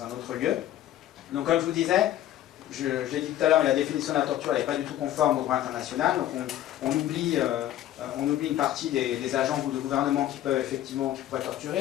lieu. Donc comme je vous disais, je l'ai dit tout à l'heure, la définition de la torture n'est pas du tout conforme au droit international, donc on oublie une partie des agents ou de gouvernement qui pourraient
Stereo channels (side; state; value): right; quieter; 12.6 dB